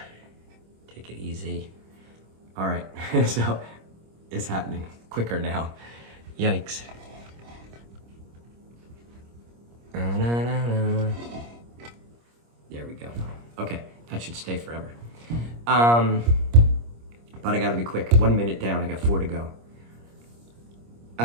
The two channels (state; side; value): late; left; 26 ms